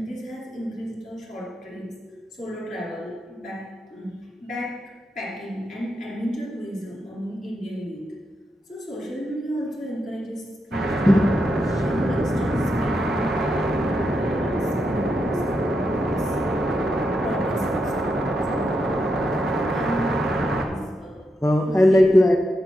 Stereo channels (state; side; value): normal; both; correlation 0.84